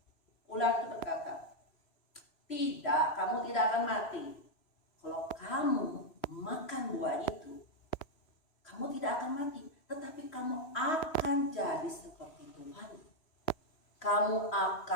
Ular itu berkata, tidak, kamu tidak akan mati. Kalau kamu makan buah itu, kamu tidak akan mati. Tetapi kamu akan jadi seperti Tuhan. Kamu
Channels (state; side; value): late; right; 3.0 ms